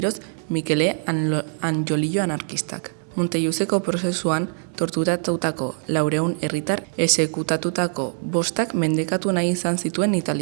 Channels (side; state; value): left; silent; 57 dB below the other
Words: Mikele Angiolillo anarkistak. Montelluzeko prozesuan torturatutako 400 herritar exekutatutako 5 mendekatu nahi izan zituen